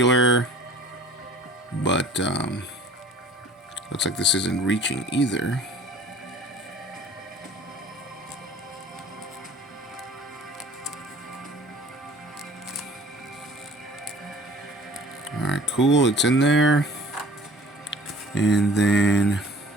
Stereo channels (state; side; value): normal; both; correlation 0.49